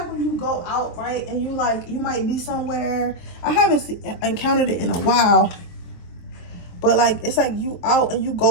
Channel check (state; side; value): late; right; 23 ms